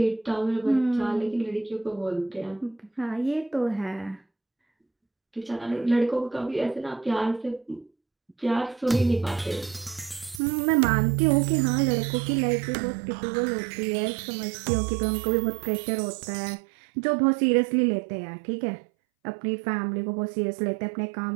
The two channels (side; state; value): left; drops out; at 10.4 s